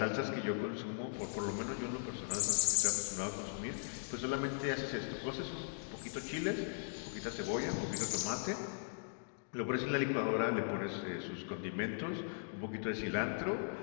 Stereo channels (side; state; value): right; silent; digital silence